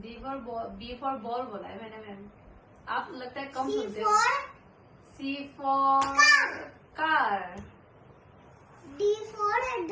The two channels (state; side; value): identical; both; correlation 1.00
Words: फॉर बॉल बोला है मैंने मैम। आप लगता है कम सी सुनते हो। For C for car. D for